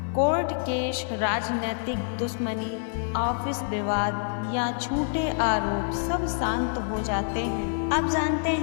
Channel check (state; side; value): silent; right; 60 dB below the other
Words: कोर्ट केस, राजनीतिक दुश्मनी, ऑफिस विवाद या झूठे आरोप सब शांत हो जाते हैं। अब जानते